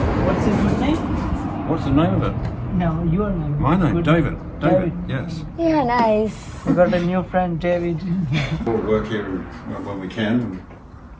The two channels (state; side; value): identical; both; correlation 1.00